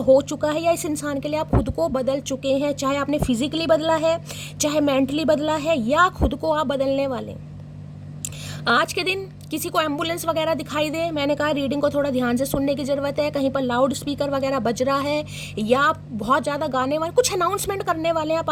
चुका है, या इस इंसान के लिए आप खुद को बदल चुके हैं, चाहे आपने फिजिकली बदला है, चाहे मेंटली बदला है, या खुद को आप बदलने वाले। आज के दिन किसी को एम्बुलेंस वगैरह दिखाई दे, मैंने कहा रीडिंग को थोड़ा ध्यान से सुनने की ज़रूरत है, कहीं पर लाउड स्पीकर वगैरह बज रहा है, या आप बहुत ज़्यादा गाने वाले, कुछ अनाउंसमेंट करने वाले हैं आप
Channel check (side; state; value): both; identical; correlation 1.00